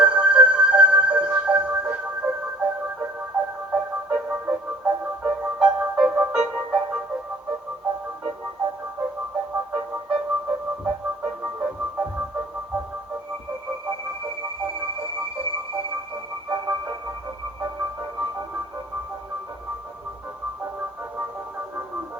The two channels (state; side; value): normal; both; correlation 0.52